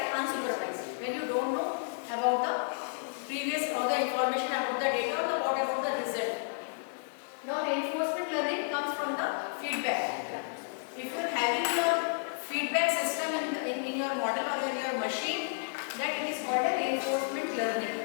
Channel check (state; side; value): silent; right; 57 dB below the other